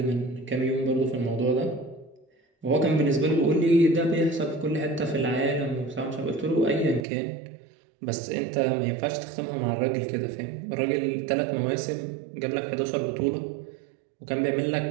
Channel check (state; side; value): drops out; left; at 7.1 s